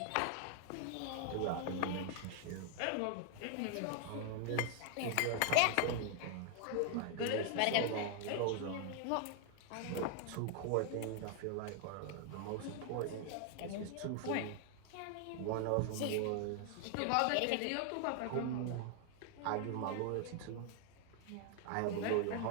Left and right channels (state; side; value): different; both; correlation 0.00